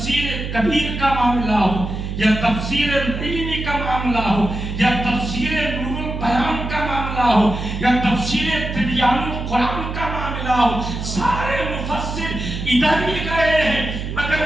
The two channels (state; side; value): noise; right; hum, 5 dB below the sound